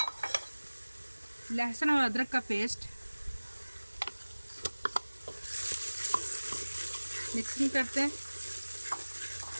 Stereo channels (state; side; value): inverted; both; correlation -1.00